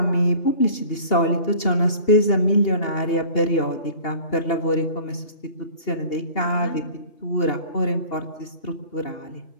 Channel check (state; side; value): late; right; 2.8 ms